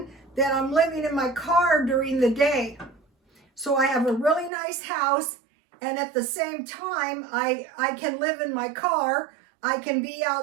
that I'm living in my car during the day. So I have a really nice house, and at the same time, I can live in my car, I can be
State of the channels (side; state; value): left; drops out; at 4.5 s